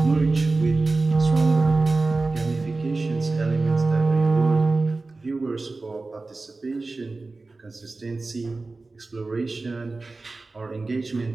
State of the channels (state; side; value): quieter; left; 3.5 dB